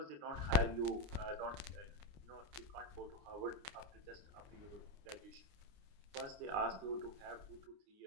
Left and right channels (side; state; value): left; late; 29 ms